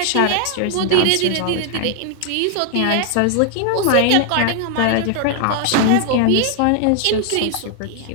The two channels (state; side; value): different; both; correlation 0.00